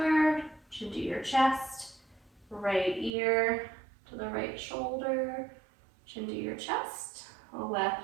chin to your chest, right ear to the right shoulder, chin to your chest,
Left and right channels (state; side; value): drops out; left; at 3.1 s